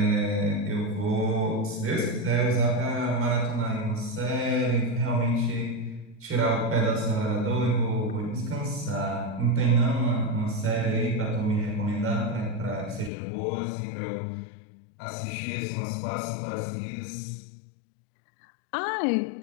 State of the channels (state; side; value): drops out; right; at 13.1 s